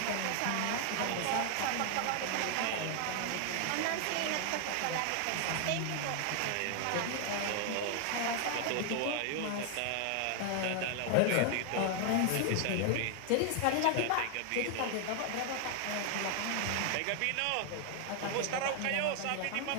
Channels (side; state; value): both; different; correlation 0.00